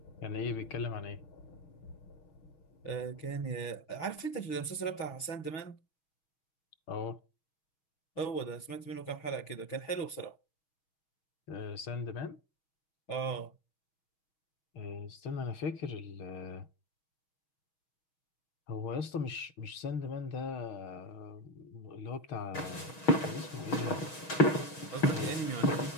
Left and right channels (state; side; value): late; right; 6.3 ms